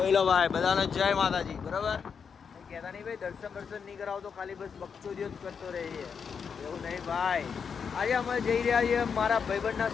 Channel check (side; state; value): right; quieter; 6.4 dB